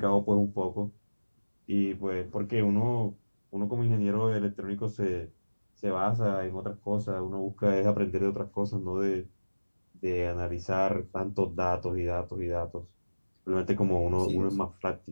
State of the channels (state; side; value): inverted; both; correlation -1.00